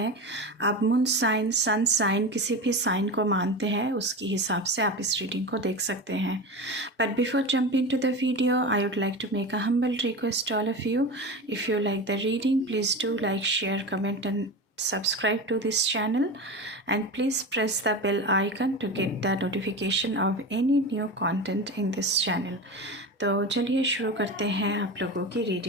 आप मून साइन, सन साइन, किसी भी साइन को मानते हैं उसके हिसाब से आप इस रीडिंग को देख सकते हैं। But before jumping to the video, I would like to make a humble request to all of you. If you like the reading, please do like, share, comment and subscribe to this channel, and please press the bell icon to get the notification of any new content in this channel. तो चलिए शुरू करते हैं आप लोगों की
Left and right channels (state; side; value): normal; both; correlation 0.26